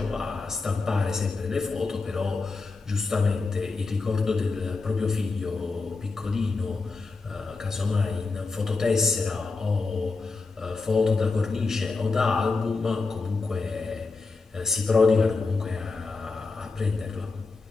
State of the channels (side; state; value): right; quieter; 4.0 dB